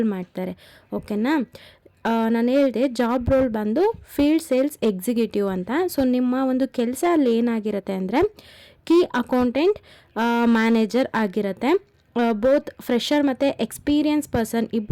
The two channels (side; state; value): both; identical; correlation 1.00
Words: ಮಾಡ್ತಾರೆ. ಓಕೆನಾ? ನಾನು ಹೇಳಿದೆ ಜಾಬ್ ರೋಲ್ ಬಂದು ಫೀಲ್ಡ್ ಸೇಲ್ಸ್ ಎಕ್ಸಿಕ್ಯೂಟಿವ್ ಅಂತ. ಸೊ ನಿಮ್ಮ ಒಂದು ಕೆಲಸ ಅಲ್ಲಿ ಏನಾಗಿರುತ್ತೆ ಅಂದರೆ ಕೀ ಅಕೌಂಟೆಂಟ್ ಮ್ಯಾನೇಜರ್ ಆಗಿರುತ್ತೆ. ಬೋತ್ ಫ್ರೆಷರ್ ಮತ್ತು ಎಕ್ಸ್ಪೀರಿಯನ್ಸ್ ಪರ್ಸನ್